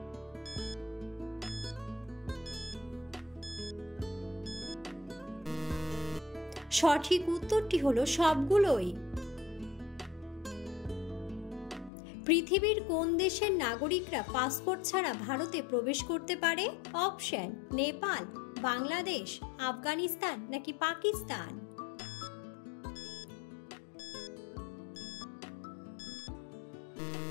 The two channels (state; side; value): drops out; right; at 11.9 s